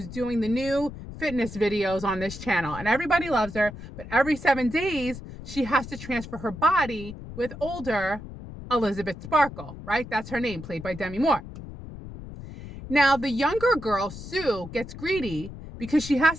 doing the new fitness videos on this channel. And everybody loves her. But every 7 days, she has to transfer her body with older Elizabeth Sparkle, right? That's her name, played by Demi Moore. Now, the younger girl, Sue, gets greedy because she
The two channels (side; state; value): left; noise; rumble, 12 dB below the sound